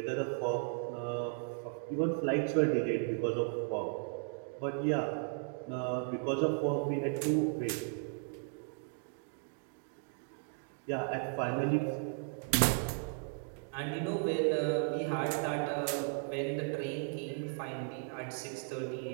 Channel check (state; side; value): silent; left; 54 dB below the other